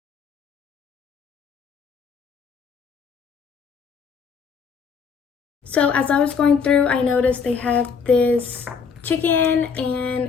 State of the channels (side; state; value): right; quieter; 6.0 dB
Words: So as I was going through, I noticed they have this chicken